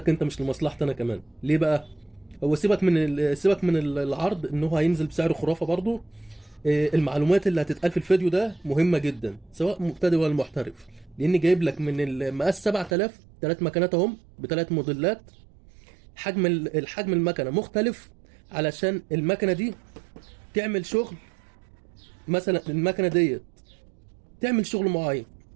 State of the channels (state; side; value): drops out; left; at 13.0 s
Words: أنت، مش لمصلحتي أنا كمان. ليه بقى؟ هو سيبك من العرض إن هو هينزل بسعر خرافة برضه. المعلومات اللي هتتقال في الفيديو ده مهمة جدا، سواء مبتدئ ولا محترف. لأني جايب لك من المقاس 7000 ثلاث مكنات أهم بثلاث موديلات. الحجم المكنه مختلف علشان المكنه دي تعمل شغل. مثلا المكنه ديت تعمل شغل معين،